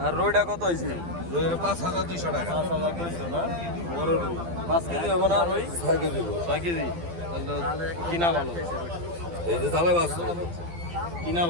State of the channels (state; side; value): late; left; 12 ms